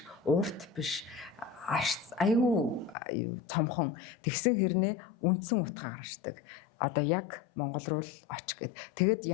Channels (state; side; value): drops out; right; at 3.0 s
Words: урт биш аюу цомхон тэгсэн хэрнээ үндсэн утга гаргаждаг. Одоо яг Монгол руу л оч гэд. Тэгэд